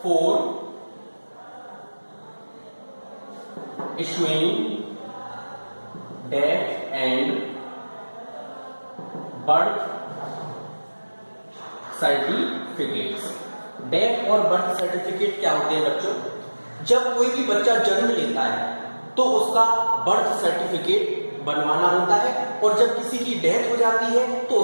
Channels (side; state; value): both; inverted; correlation -1.00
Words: for issuing death and birth certificates. Death और बर्थ सर्टिफिकेट क्या होते हैं बच्चों? जब कोई भी बच्चा जन्म लेता है तो उसका बर्थ सर्टिफिकेट बनवाना होता है, और जब किसी की डेथ हो जाती है तो